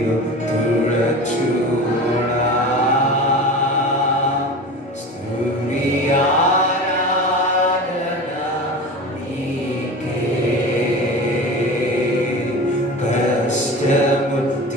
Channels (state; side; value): normal; both; correlation 0.32